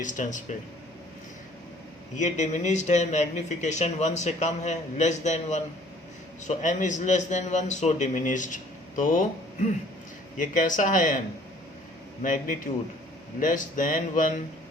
पे। ये डिमिनिश्ड है, मैग्निफिकेशन 1 से कम है, less than 1, so m is less than 1, so diminished. तो ये कैसा है m? Magnitude less than 1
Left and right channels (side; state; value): right; noise; hum, 30 dB below the sound